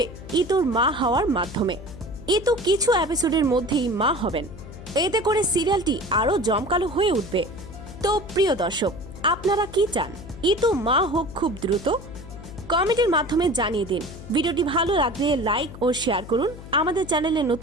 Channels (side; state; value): left; noise; hum, 14 dB below the sound